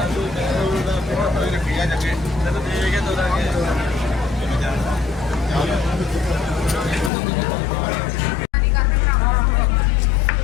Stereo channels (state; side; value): drops out; right; at 7.1 s